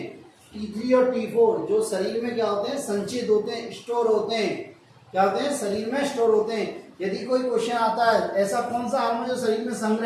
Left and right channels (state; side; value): identical; both; correlation 1.00